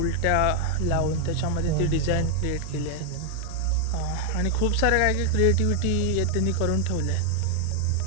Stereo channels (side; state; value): both; different; correlation 0.00